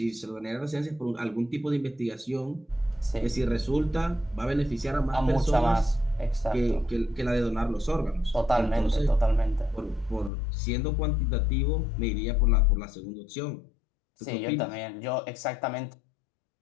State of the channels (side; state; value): right; drops out; at 10.3 s